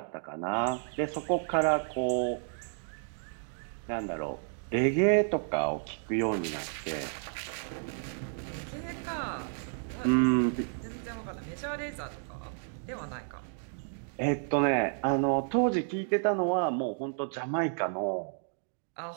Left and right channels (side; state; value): left; silent; digital silence